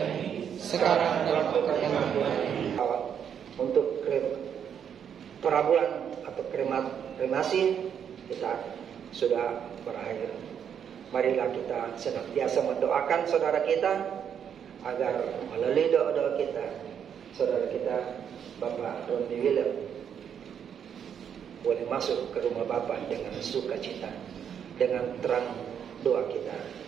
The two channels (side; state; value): left; quieter; 8.2 dB